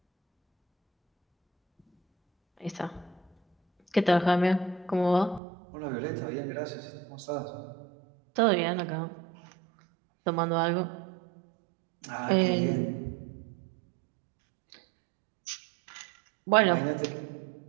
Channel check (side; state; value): left; drops out; at 5.4 s